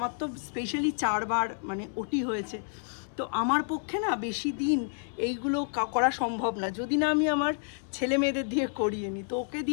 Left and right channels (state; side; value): silent; right; 58 dB below the other